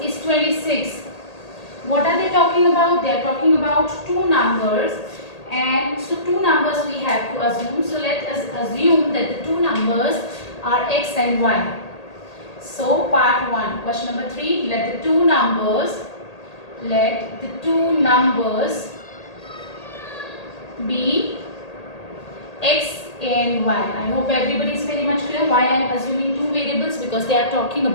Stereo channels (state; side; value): late; right; 1.8 ms